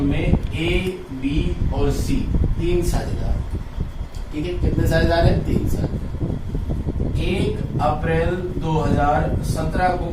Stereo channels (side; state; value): both; identical; correlation 1.00